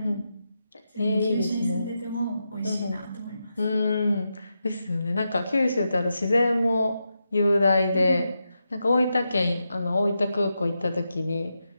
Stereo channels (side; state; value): both; inverted; correlation -0.87